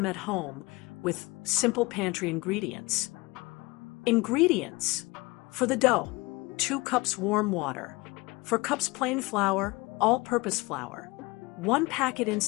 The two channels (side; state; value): right; quieter; 23.8 dB